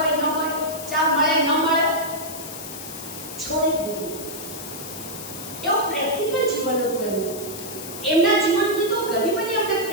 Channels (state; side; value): noise; left; hiss, 10 dB below the sound